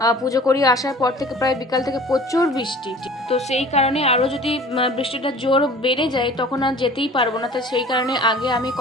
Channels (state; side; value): normal; both; correlation 0.46